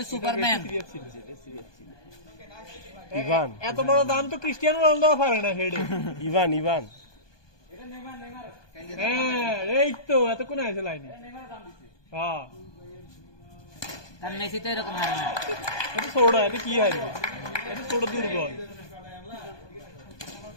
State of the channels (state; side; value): late; right; 1.2 ms